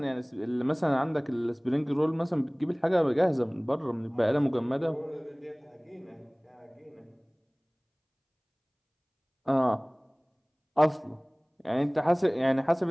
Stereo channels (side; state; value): both; identical; correlation 1.00